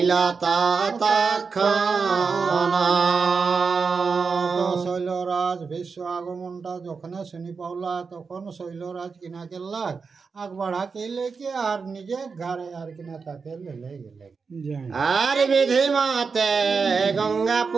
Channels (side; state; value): left; quieter; 5.1 dB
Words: তৎক্ষণ। শৈলরাজ ভীষ্ম আগমনটা যখন শুনি পাওলা, তখন শৈলরাজ কিনা গেল আগ বাড়া কেলে কে আর নিজে ঘরে আর কিনা তাকে লেলে গেলে। আর বিধি মতে গঙ্গা